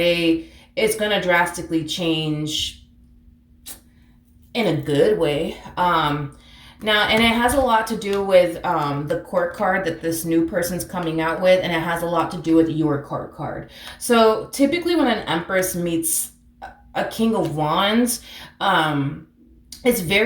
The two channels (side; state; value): both; identical; correlation 1.00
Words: it's going to drastically change in a good way. Now, and it has a lot to do with the court card that this new person's coming out with, and it has a lot to do with your court card. So typically, when an Empress meets a King of Wands, um, it's